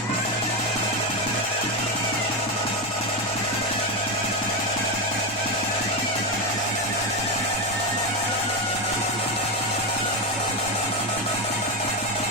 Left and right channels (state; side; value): normal; both; correlation 0.10